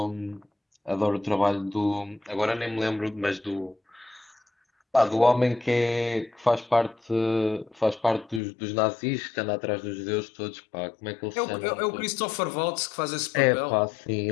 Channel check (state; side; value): drops out; right; at 8.4 s